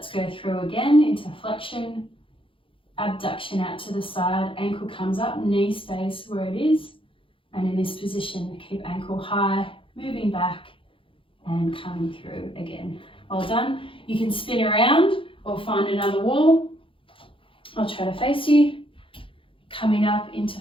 go through again into flexion, abduction out to the side, ankle comes up, knee stays where it is, and in this position, keep ankle high, moving back and coming through again. Well done. You can spin around or find another wall. I'll try to face you. Coming up into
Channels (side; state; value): right; late; 0.25 ms